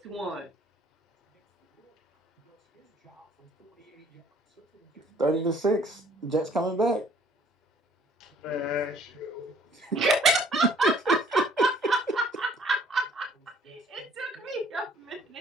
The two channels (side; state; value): both; normal; correlation 0.58